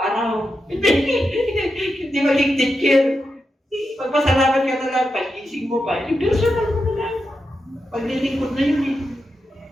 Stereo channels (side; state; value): both; normal; correlation 0.88